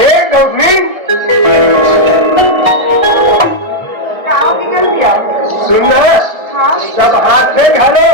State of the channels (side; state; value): left; late; 1.6 ms